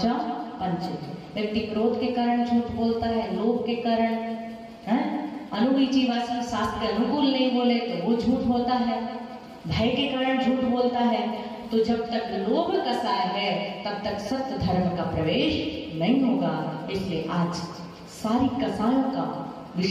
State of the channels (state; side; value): identical; both; correlation 1.00